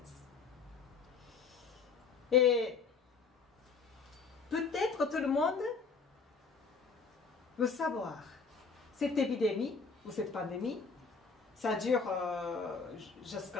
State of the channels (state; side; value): quieter; right; 4.9 dB